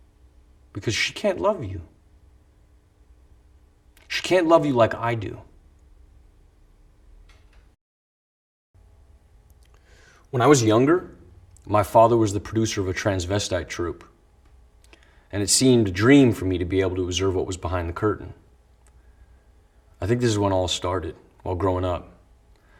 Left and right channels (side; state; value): both; identical; correlation 1.00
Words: Because she can't love you. She can't love you like I do. When I was younger, my father was the producer of a transvestite troupe, and it seemed a dream for me to be able to observe what was behind the curtain. I think this is when all started, while growing up.